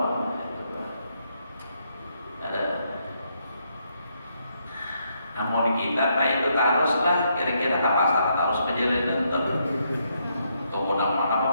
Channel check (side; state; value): both; inverted; correlation -0.76